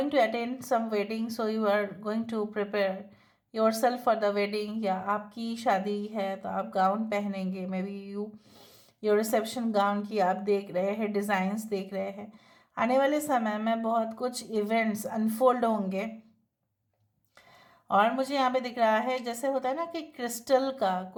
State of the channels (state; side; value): identical; both; correlation 1.00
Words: to attend some wedding, so you are going to prepare yourself for the wedding. या आपकी शादी है तो आप गाउन पहनेंगे, may be your reception gown की आप देख रहे हैं, डिज़ाइंस देख रहे हैं. आने वाले समय में बहुत कुछ इवेंट्स अनफोल्ड होंगे. और मुझे यहाँ पे दिख रहा है जैसे होता है ना कि क्रिस्टल का